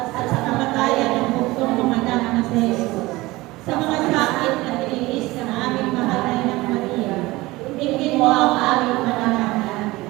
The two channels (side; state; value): left; quieter; 20.1 dB